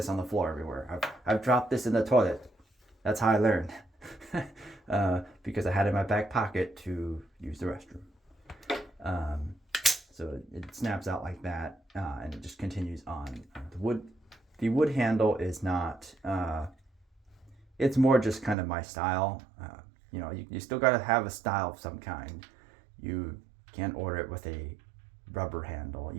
on the floor everywhere. I've dropped this in the toilet. That's how I learned. Because I had it in my back pocket to use the restroom. So it snaps out like that, and it just continues on. The wood handle is not. It's more just kind of my style. You still got to have a style of some kind. You can't order it with a rubber handle. It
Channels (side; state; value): left; drops out; at 18.6 s